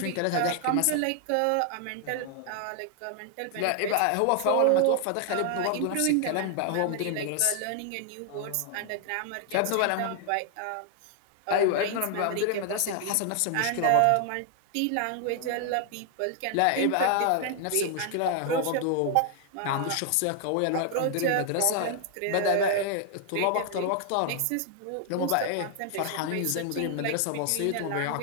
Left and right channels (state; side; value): different; both; correlation 0.00